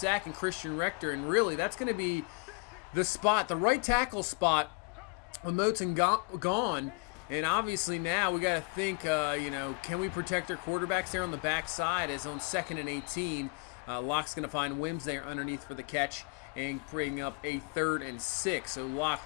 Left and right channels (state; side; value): quieter; right; 31.8 dB